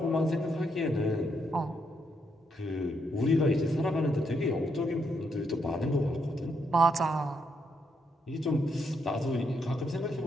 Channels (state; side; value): normal; both; correlation 0.77